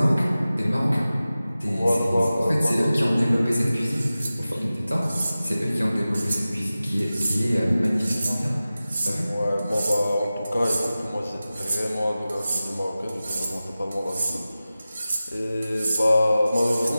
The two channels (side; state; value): both; inverted; correlation -0.96